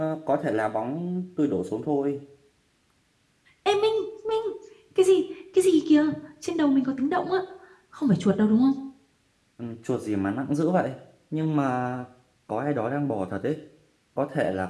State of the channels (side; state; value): both; identical; correlation 1.00